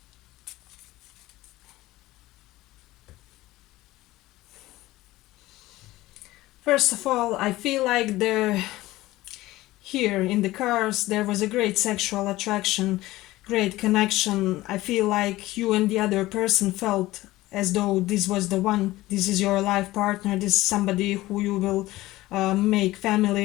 First of all, I feel like here in the cards there was a great sexual attraction, great connection. I feel like you and the other person felt as though this was the one, this is your life partner, this is somebody who you will make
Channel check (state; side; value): quieter; right; 17.5 dB